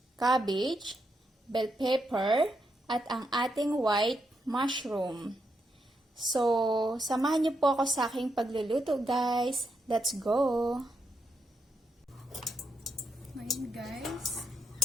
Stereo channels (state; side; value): normal; both; correlation 0.82